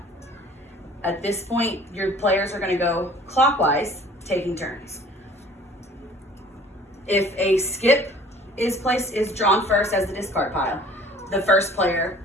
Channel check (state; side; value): normal; both; correlation 0.51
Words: At this point, your players are going to go clockwise, taking turns. If a skip is drawn first as the discard pile, the first player